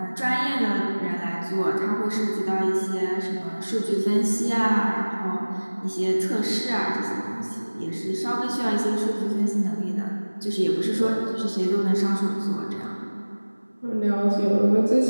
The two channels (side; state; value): both; inverted; correlation -1.00